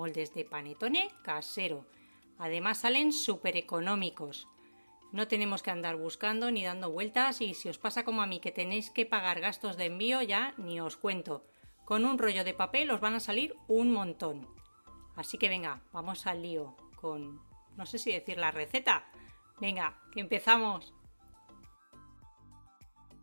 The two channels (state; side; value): inverted; both; correlation -1.00